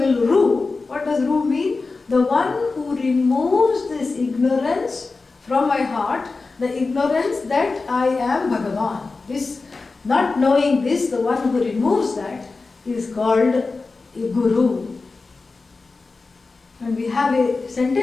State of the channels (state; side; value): quieter; right; 3.9 dB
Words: Ru, what does Ru mean? The one who removes this ignorance from my heart, the ignorance that I am Bhagavan. This, not knowing this, the one who removes that is called a Guru. And we have a